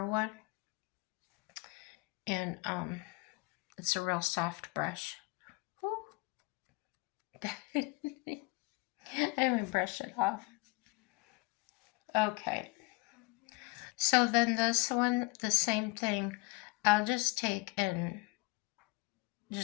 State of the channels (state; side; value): quieter; right; 24.8 dB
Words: one. And it's a real soft brush. I haven't brushed it off. Okay. So then this one, the same thing. I'll just take and